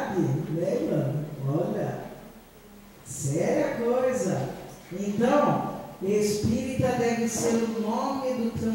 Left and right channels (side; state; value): both; identical; correlation 1.00